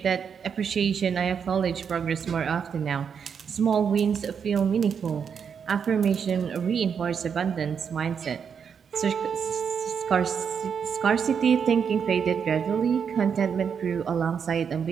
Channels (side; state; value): left; quieter; 6.9 dB